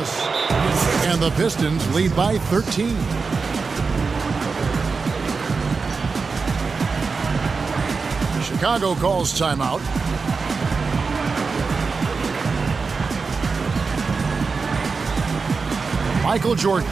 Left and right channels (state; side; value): quieter; left; 4.7 dB